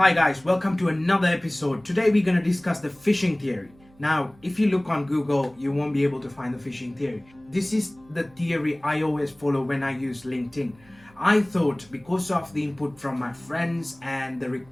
guys, welcome to another episode. Today we're going to discuss the phishing theory. Now, if you look on Google, you won't be able to find the phishing theory. This is the theory I always follow when I use LinkedIn. I thought because of the input from my friends and the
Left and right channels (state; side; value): noise; right; hum, 28 dB below the sound